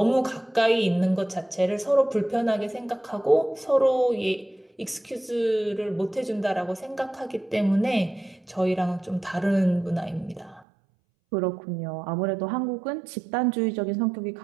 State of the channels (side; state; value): left; drops out; at 10.7 s